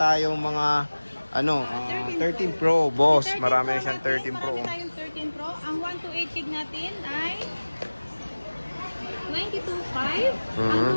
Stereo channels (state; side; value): inverted; both; correlation -1.00